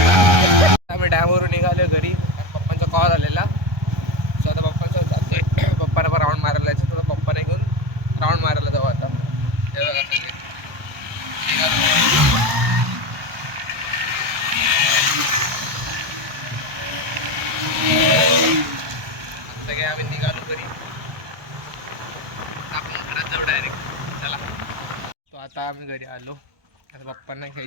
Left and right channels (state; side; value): late; left; 1.2 ms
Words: राऊंड मारायला जाऊ आता. हे बघा सगळे. सगळे आम्ही निघालो घरी. आपण घरात जाऊ डायरेक्ट. चला. तो आता आम्ही घरी आलो. आता पप्पांना